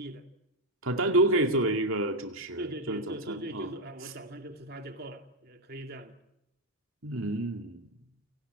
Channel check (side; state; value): both; normal; correlation 0.03